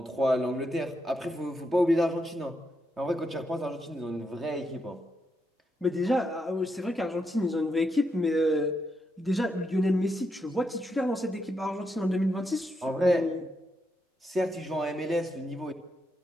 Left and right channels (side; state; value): both; normal; correlation 0.82